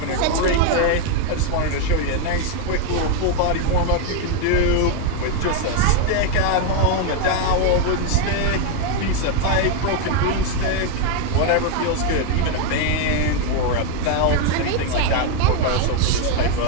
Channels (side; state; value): both; different; correlation 0.01